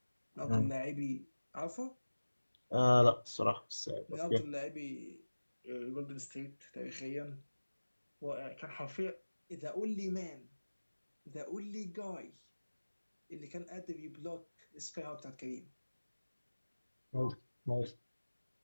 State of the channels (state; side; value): inverted; both; correlation -1.00